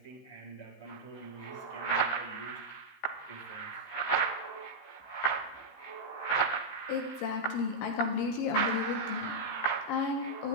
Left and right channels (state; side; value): late; right; 15 ms